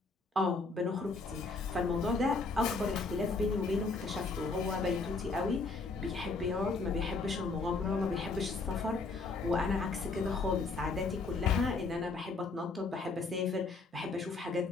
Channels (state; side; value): quieter; right; 3.8 dB